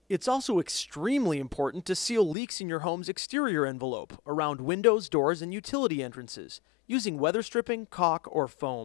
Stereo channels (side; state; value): right; drops out; at 2.4 s